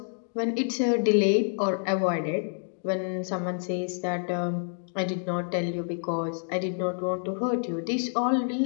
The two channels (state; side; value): silent; right; digital silence